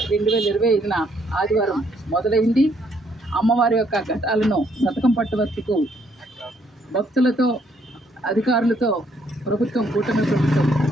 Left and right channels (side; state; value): both; normal; correlation 0.69